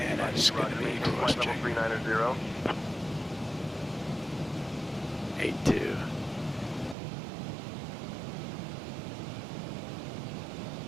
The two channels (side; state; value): left; drops out; at 7.0 s